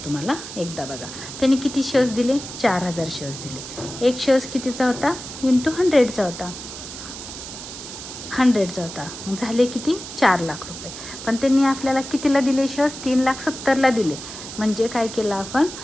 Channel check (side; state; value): right; noise; hiss, 11 dB below the sound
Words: तुम्हाला एकदा बघा त्यांनी किती शेअर्स दिले 4,000 शेअर्स दिले. एक शेअर्स कितीचा होता × 100चा होता. 100चा होता, मग झाले किती 4 लाख रुपये. पण त्यांनी आपल्याला कितीला दिले शेअर्स, 3,70,000ला दिले. म्हणजे काय केलं आपण,